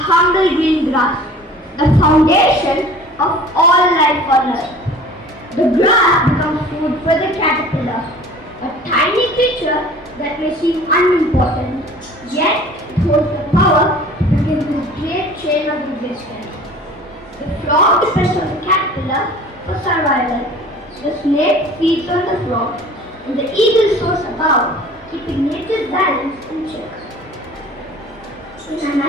green grass, the foundation of all life on earth. The grass becomes food for the caterpillar, a tiny creature that may seem unimportant, yet it holds the power to begin this great chain of existence. The frog depends on the caterpillar for survival. The snake feeds on the frog, and the eagle soars above, keeping nature's balance in check. In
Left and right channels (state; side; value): normal; both; correlation 0.45